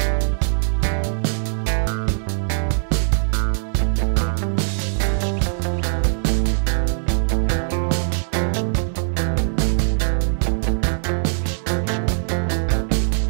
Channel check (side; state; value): left; silent; 65 dB below the other